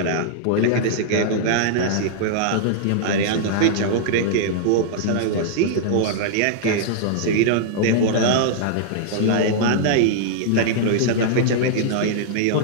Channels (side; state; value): both; different; correlation -0.01